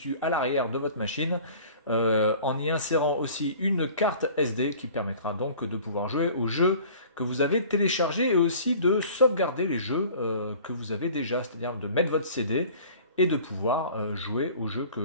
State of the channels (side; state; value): both; inverted; correlation -0.46